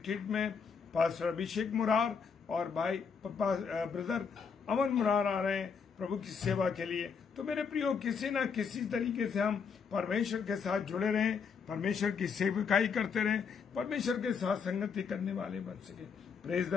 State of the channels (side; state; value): right; quieter; 6.0 dB